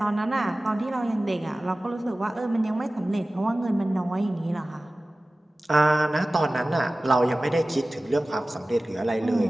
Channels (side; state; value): both; normal; correlation 0.97